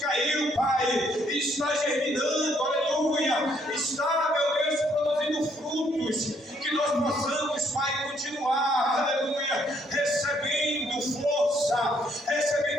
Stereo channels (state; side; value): normal; both; correlation 0.69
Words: Pai, e está germinando, aleluia, está, meu Deus, produzindo frutos, que nós possamos, Pai, continuar, aleluia, recebendo força,